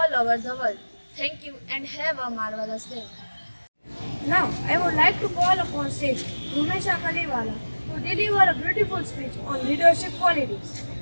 over the world. Thank you and have a marvelous day. Now, I would like to call upon stage Rumesha Kaliwala to deliver a beautiful speech on leadership qualities.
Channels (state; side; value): inverted; both; correlation -1.00